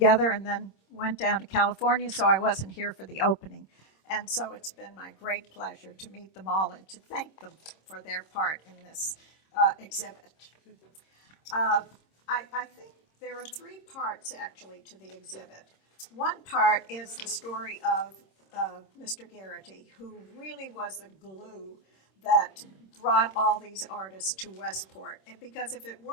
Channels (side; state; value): right; late; 26 ms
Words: and then went down to California, so I wasn't here for the opening. And so it's been my great pleasure to meet them all and to thank them for their part in this exhibit. I think there are three parts actually to the exhibit. One part is the story of Mr. Garrity, who really was the glue that brought all these artists to Westport. And because if it